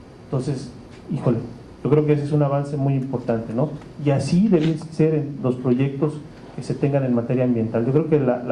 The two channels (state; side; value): identical; both; correlation 1.00